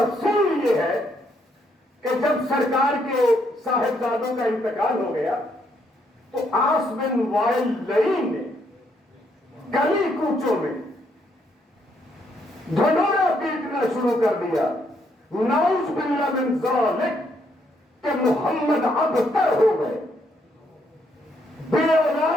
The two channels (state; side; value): normal; both; correlation 0.73